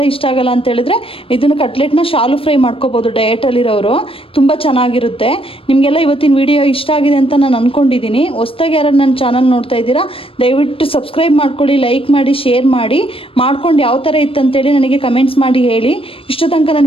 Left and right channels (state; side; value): late; right; 0.27 ms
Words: ಇಷ್ಟ ಆಗಲ್ಲ ಅಂತ ಹೇಳಿದ್ರೆ ಇದನ್ನು ಕಟ್ಲೆಟ್ನ ಶಾಲು ಫ್ರೈ ಮಾಡ್ಕೋಬೋದು. ಡಯಟಲ್ಲಿರೋರು ತುಂಬ ಚೆನ್ನಾಗಿರುತ್ತೆ. ನಿಮಗೆಲ್ಲ ಇವತ್ತಿನ ವಿಡಿಯೋ ಇಷ್ಟ ಆಗಿದೆ ಅಂತ ನಾನು ಅಂದ್ಕೊಂಡಿದ್ದೀನಿ. ಹೊಸ್ದಾಗಿ ಯಾರು ನನ್ನ ಚಾನಲ್ ನೋಡ್ತಾ ಇದ್ದೀರಾ ದಯವಿಟ್ಟು ಸಬ್ಸ್ಕ್ರೈಬ್ ಮಾಡ್ಕೊಳ್ಳಿ, ಲೈಕ್ ಮಾಡಿ, ಶೇರ್ ಮಾಡಿ. ಮಾಡ್ಕೊಂಡು ಯಾವ ಥರ ಇತ್ತು ಅಂತೇಳಿ ನನಗೆ ಕಮೆಂಟ್ಸ್ ಮಾಡಿ ಹೇಳಿ. ಇಷ್ಟು ತನಕ